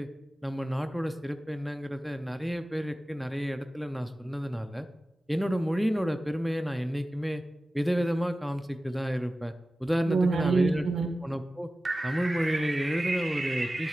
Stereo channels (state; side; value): normal; both; correlation 0.95